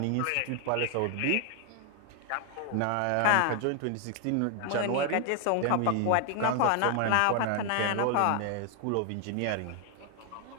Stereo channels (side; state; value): both; different; correlation 0.00